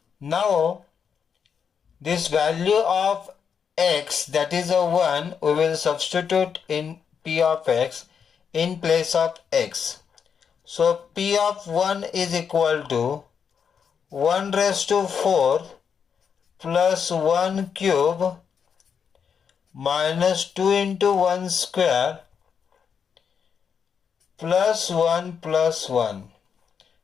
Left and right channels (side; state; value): right; quieter; 6.9 dB